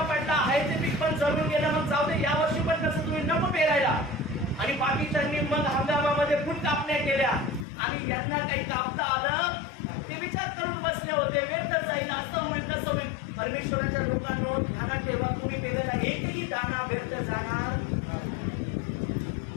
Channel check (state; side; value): drops out; right; at 7.7 s